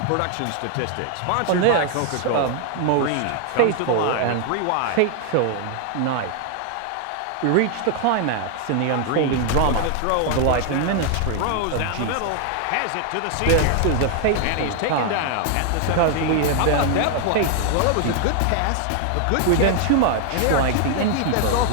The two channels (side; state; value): both; different; correlation 0.00